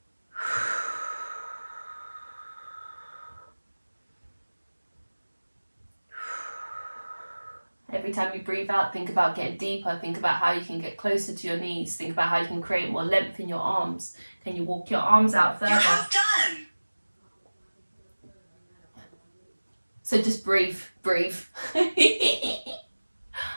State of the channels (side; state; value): both; inverted; correlation -1.00